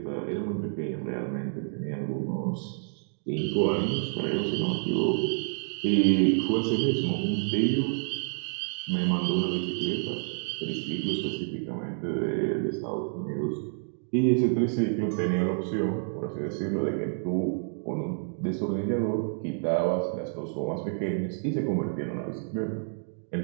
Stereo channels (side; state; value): left; silent; digital silence